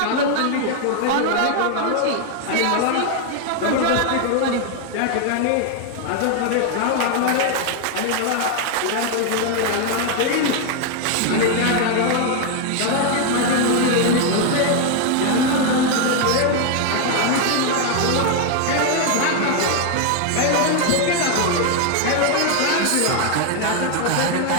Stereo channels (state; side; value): different; both; correlation 0.01